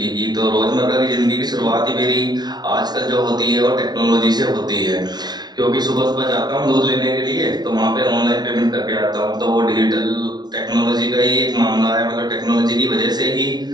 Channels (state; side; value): late; left; 0.20 ms